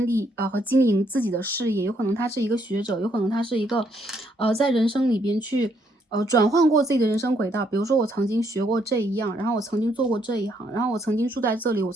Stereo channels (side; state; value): both; normal; correlation 0.72